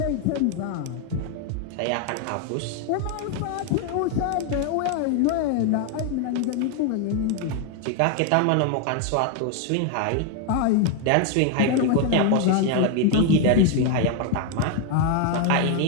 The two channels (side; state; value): both; different; correlation 0.01